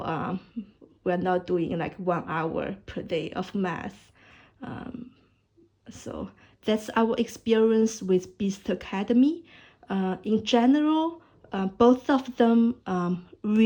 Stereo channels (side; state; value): both; identical; correlation 1.00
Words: we're not doing like 1 hour per day of math. So that's our experience with Beast Academy. In general, both of them